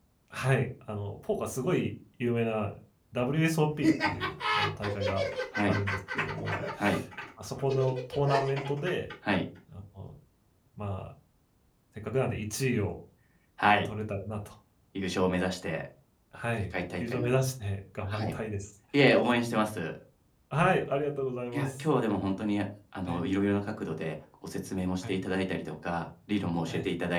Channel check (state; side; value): identical; both; correlation 1.00